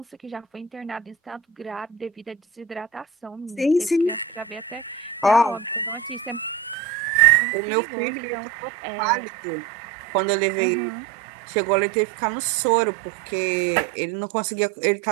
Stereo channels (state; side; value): drops out; left; at 6.8 s